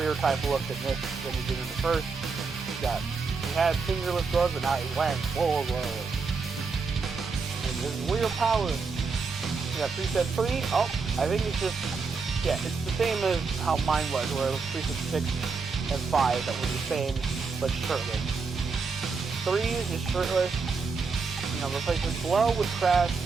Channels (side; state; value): left; quieter; 4.8 dB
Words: type look in this when he did in the first. He had fingerless gloves, but now he's wearing full gloves. And this is weird power. We got preset 3. Oh, I think it's just, yeah, it's the same as how mine was, where it was preset 6 and 5 that were the same, but shirtless. 3 is just shirtless. You know, replaces Blow with Crash,